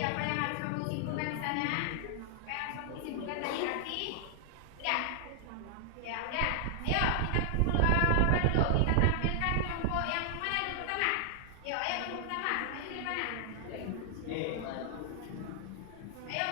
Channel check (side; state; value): both; different; correlation 0.00